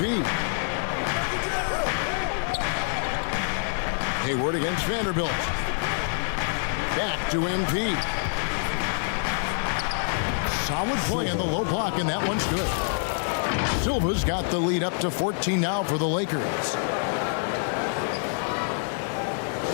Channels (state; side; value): silent; right; digital silence